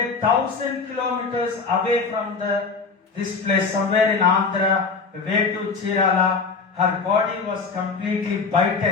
1000 kilometers away from this place, somewhere in Andhra, way to Chirala. Her body was completely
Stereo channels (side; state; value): right; quieter; 4.8 dB